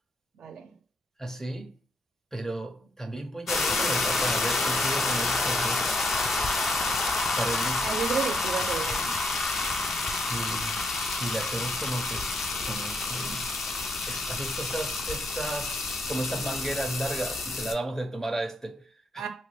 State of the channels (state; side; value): normal; both; correlation 0.75